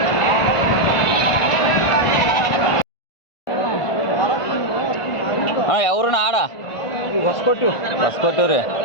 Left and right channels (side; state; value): right; late; 1.5 ms